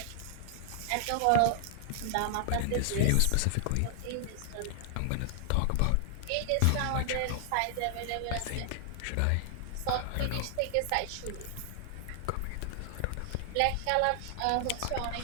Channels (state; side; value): different; both; correlation 0.00